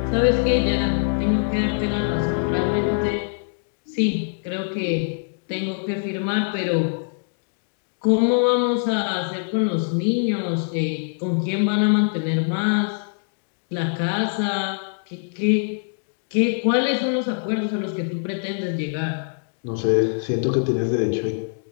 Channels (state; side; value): silent; right; digital silence